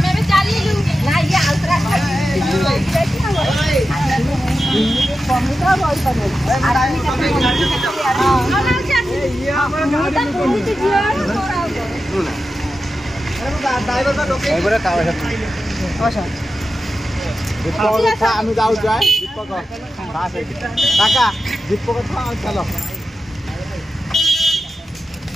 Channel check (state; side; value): normal; both; correlation 0.92